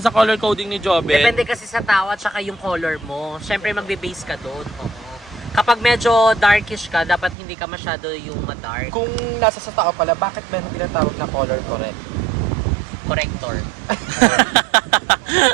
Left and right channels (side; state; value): left; drops out; at 7.4 s